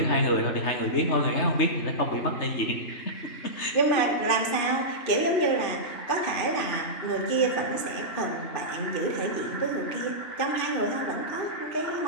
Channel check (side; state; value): right; late; 2.6 ms